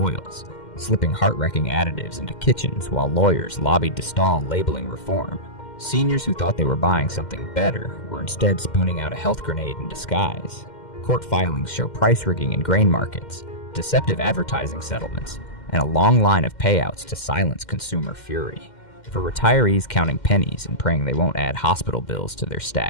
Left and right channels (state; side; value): late; right; 2.1 ms